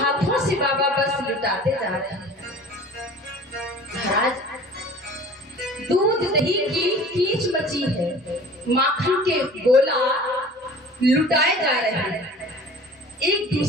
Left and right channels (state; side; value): normal; both; correlation 0.44